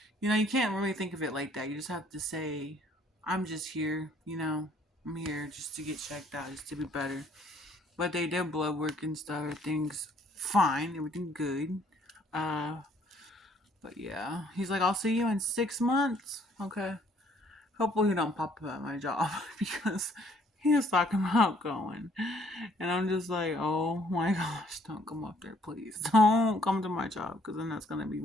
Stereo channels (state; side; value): normal; both; correlation 0.63